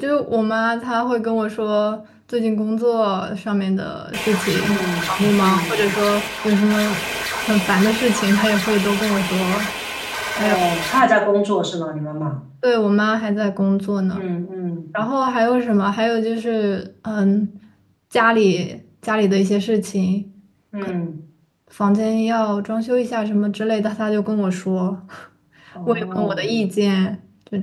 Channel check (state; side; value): identical; both; correlation 1.00